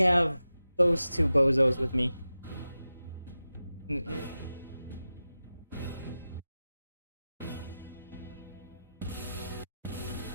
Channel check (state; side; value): inverted; both; correlation -0.93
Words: those 2 bozos with me? Good.